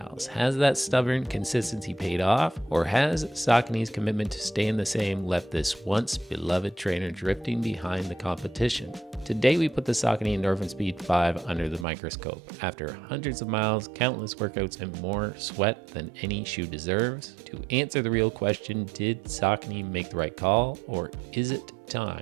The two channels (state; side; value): drops out; left; at 11.9 s